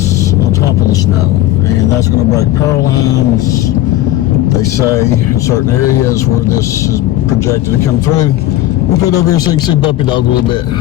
on top of the snow. And that's going to break power lines, they say, in certain areas where this is projected to come through. We'll put it over here so you can see Puppy Dog a little bit.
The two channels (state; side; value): quieter; right; 14.5 dB